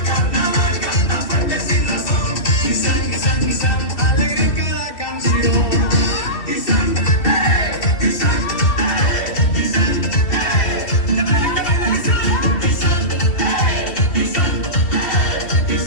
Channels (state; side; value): late; right; 3.1 ms